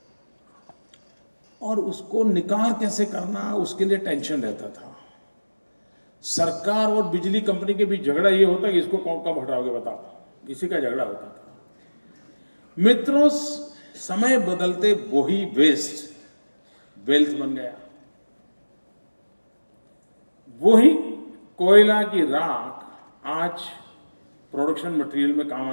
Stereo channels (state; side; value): inverted; both; correlation -1.00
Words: और उसको निकाल कैसे करना, उसके लिए टेंशन रहता था। सरकार और बिजली कंपनी के बीच झगड़ा ये होता कि इसको कब हटाओगे बताओ, इसी का झगड़ा होता था। मित्रों, समय बदलते वही वेस्ट वेल्थ बन गया। वही कोयला की राख आज प्रोडक्शन मटेरियल में काम